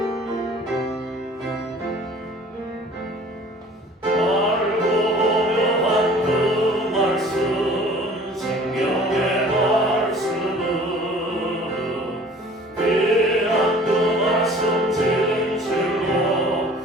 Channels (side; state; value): both; normal; correlation 0.49